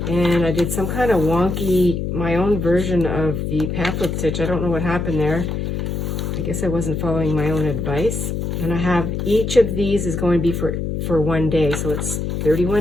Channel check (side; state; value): left; noise; hum, 2 dB below the sound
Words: And I did some kind of wonky, my own version of the pamphlet stitch. I don't know what happened there. I guess I wasn't following my own advice. And I have, each of these is going to be for 1 day. So it's